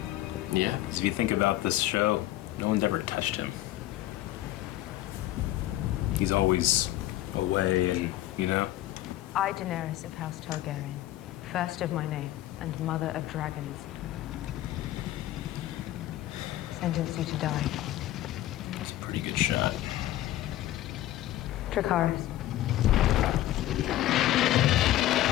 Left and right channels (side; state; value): right; quieter; 14.5 dB